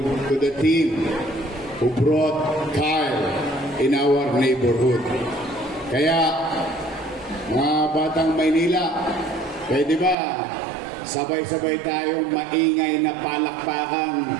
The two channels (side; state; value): left; drops out; at 10.2 s